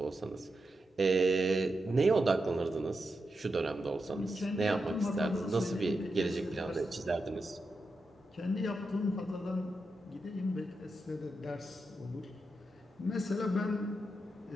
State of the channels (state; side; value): normal; both; correlation 0.87